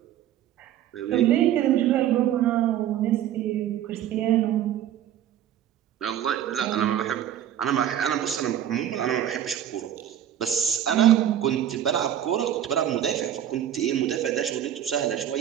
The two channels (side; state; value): left; quieter; 10.9 dB